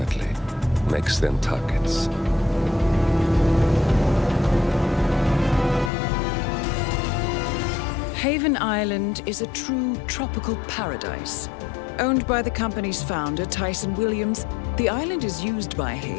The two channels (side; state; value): right; drops out; at 5.9 s